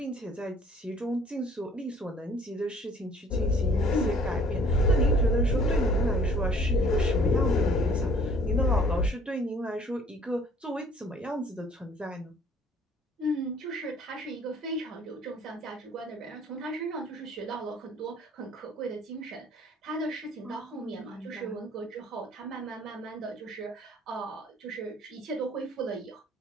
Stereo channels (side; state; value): both; normal; correlation 0.56